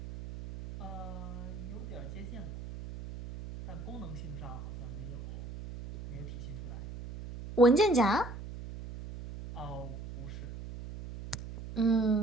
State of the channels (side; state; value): right; noise; hum, 10 dB below the sound